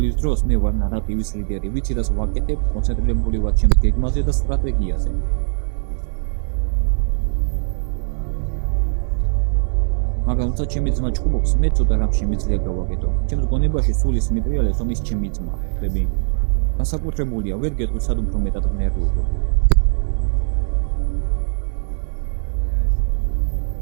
დროს მე ვარ ნარატივის ლიდერი, ვიცი რას ვაკეთებ, კონცენტრირებული ვარ ჩემს გეგმაზე და სტრატეგიაზე. მაგრამ როცა ჩემი ძმა ჭუბობს, მე ცოტა რამ შემიძლია გავაკეთო. ჩემს გონებაში სულ ის მიტრიალებს, რომ ის ჩემი ძმა, ხვდები? განსაკუთრებულია, ვერ გეტყვი სად უფრო მეტად ნერვიულობ.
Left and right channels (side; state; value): left; silent; 65 dB below the other